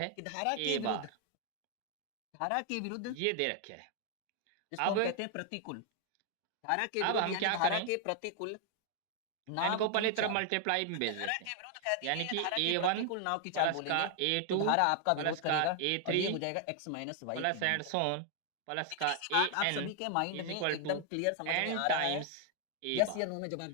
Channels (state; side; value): different; both; correlation 0.00